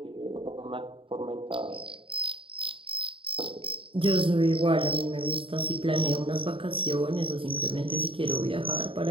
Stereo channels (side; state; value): left; late; 0.25 ms